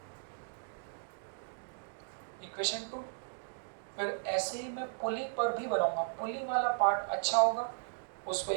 इक्वेशन 2। फिर ऐसे ही मैं पुली पर भी बनाऊंगा, पुली वाला पार्ट अच्छा होगा, उसको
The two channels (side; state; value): left; silent; digital silence